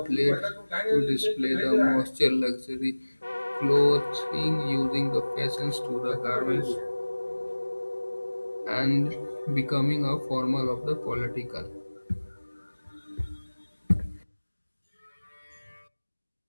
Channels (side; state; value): both; inverted; correlation -1.00